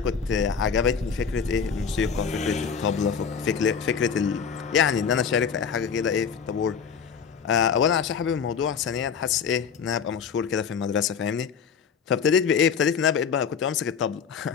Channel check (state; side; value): quieter; right; 6.6 dB